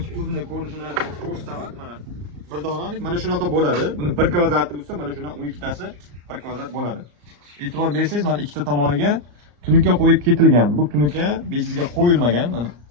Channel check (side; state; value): left; late; 34 ms